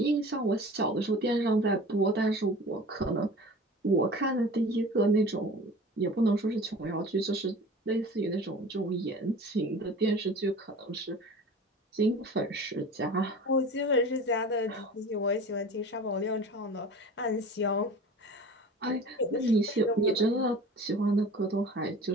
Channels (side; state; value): both; normal; correlation 0.39